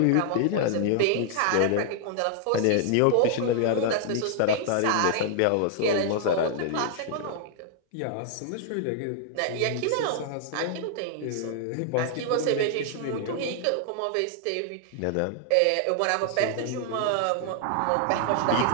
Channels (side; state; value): both; different; correlation 0.00